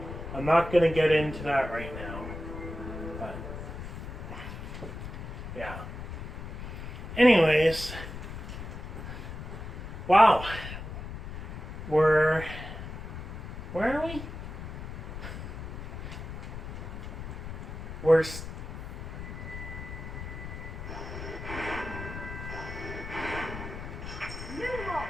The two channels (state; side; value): noise; left; rumble, 8 dB below the sound